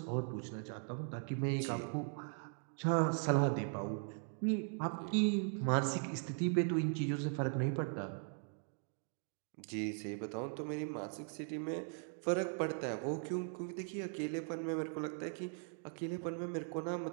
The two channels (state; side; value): silent; left; 51 dB below the other